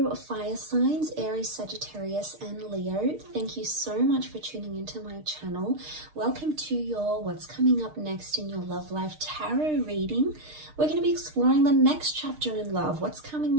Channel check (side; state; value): left; late; 6.6 ms